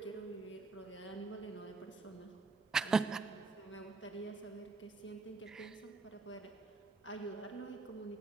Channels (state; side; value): quieter; left; 4.1 dB